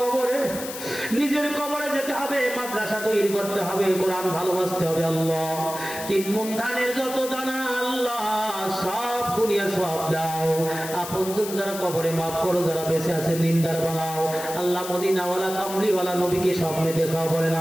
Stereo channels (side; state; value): left; noise; hiss, 10 dB below the sound